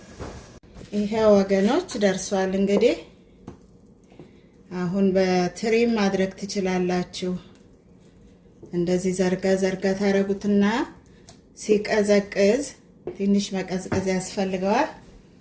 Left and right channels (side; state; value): both; identical; correlation 1.00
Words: ይሄ ወገኖች ደርሷል። እንግዲህ አሁን በትሪ ማድረግ ትችላላችሁ። እንደዚህ ዘርጋ ዘርጋ ታረጉትና ሲቀዘቅዝ ትንሽ መቀዝቀዝ ያስፈልገዋል።